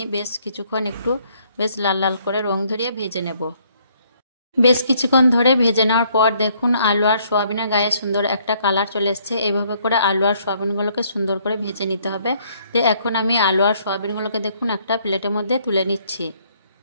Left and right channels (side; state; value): both; inverted; correlation -0.66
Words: বেশ কিছুক্ষণ একটু বেশ লাল লাল করে রং ধরিয়ে ভেজে নেব। বেশ কিছুক্ষণ ধরে ভেজে নেওয়ার পর দেখুন আলু আর সোয়াবিনের গায়ে সুন্দর একটা কালার চলে এসছে। এইভাবে করে আলু আর সোয়াবিনগুলোকে সুন্দর করে ভেজে নিতে হবে। তো এখন আমি আলু আর সোয়াবিনগুলোকে দেখুন একটা প্লেটের মধ্যে তুলে নিচ্ছি।